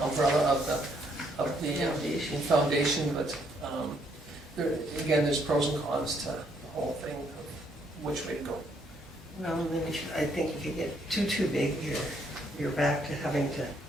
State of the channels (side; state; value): both; normal; correlation 0.70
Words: umbrella of the foundation, but there's pros and cons to the whole thing of which way to go. Well, then I think if you get too big, you're back to having to